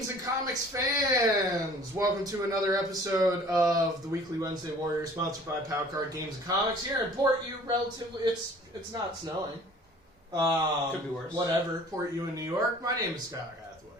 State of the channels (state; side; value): normal; both; correlation 0.50